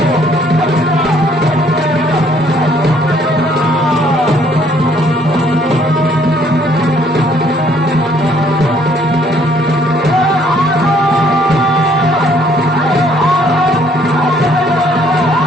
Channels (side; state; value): both; normal; correlation 0.63